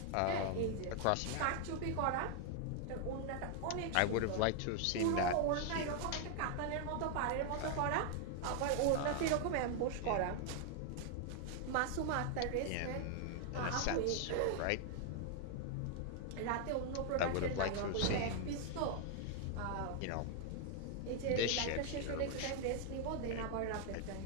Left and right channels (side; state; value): both; different; correlation 0.00